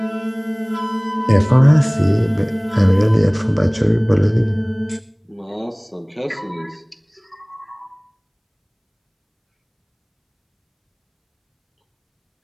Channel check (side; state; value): both; identical; correlation 1.00